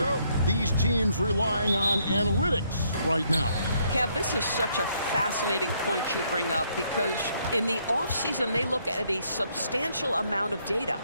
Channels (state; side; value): inverted; both; correlation -0.71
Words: these teams relying on analytics right now? Kev, this is such a fascinating point you bring up, because in the offseason, they look at a substantial amount of data.